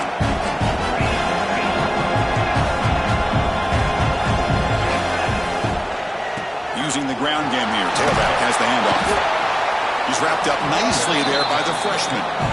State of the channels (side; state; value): both; identical; correlation 1.00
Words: Using the ground game here. Tailback has the handoff. He's wrapped up nicely there by the freshman.